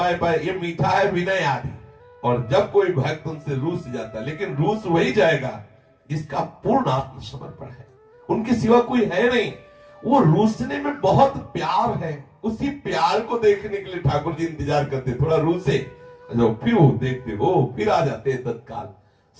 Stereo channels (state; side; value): identical; both; correlation 1.00